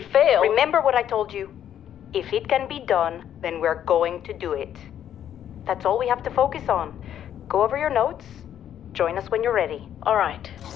fail... Remember what I told you. If it can be done, then we're going to do it. That's all we have to focus on. Go over your notes. Join us when you're ready. All right.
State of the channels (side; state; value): right; quieter; 10.2 dB